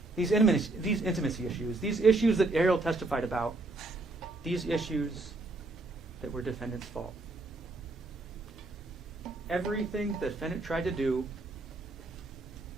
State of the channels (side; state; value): left; quieter; 3.1 dB